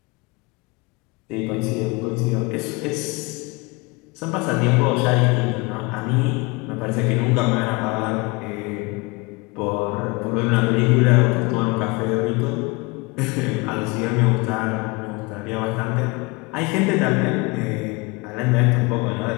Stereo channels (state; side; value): quieter; right; 26.0 dB